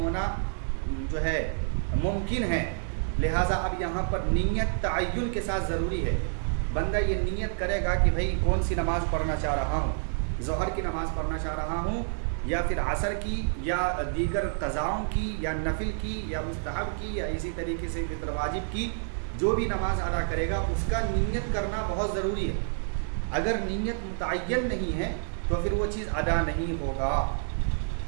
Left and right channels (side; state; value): left; silent; 59 dB below the other